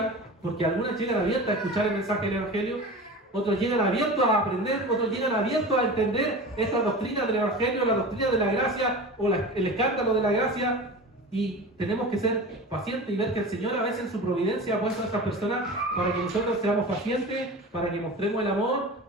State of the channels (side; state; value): both; normal; correlation 0.33